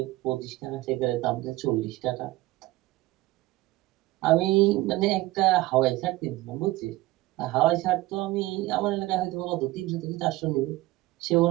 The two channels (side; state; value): left; quieter; 18.4 dB